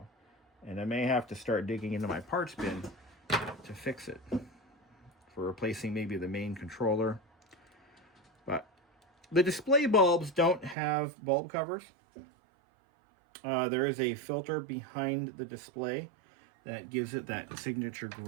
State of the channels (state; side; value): drops out; left; at 10.8 s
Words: And I may have to start digging into my parts bin to fix it. For replacing maybe the main controller. But the display bulbs don't have bulb covers. There is a filter behind the display that gives it that signature